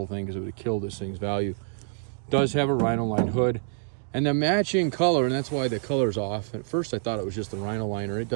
thing because it would have killed this thing's value. It does have a Rhino lined hood. And the matching color, and that's why the color's off. At first I thought it was just the Rhino liner. It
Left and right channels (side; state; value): left; silent; digital silence